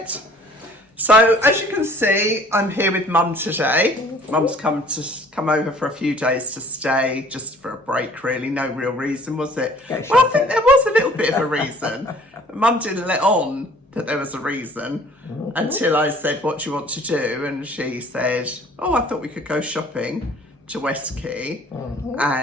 So, as you can see, I'm here with Mum today. Mum's come over for a few days to stay, just for a break, really. No real reason, was it? Well, I think there was a little bit of a reason. Mum didn't let on that there was a reason until I said, what do you want to do? And she said, oh, I thought we could go shopping to West Quay.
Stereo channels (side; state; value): both; normal; correlation 0.54